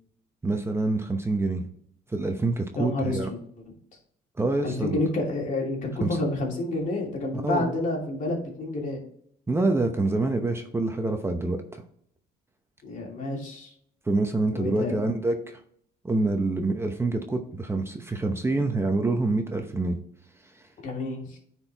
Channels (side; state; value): both; normal; correlation 0.73